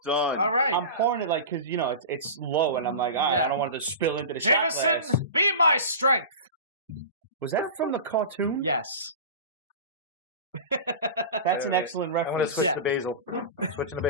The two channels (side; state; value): both; inverted; correlation -0.31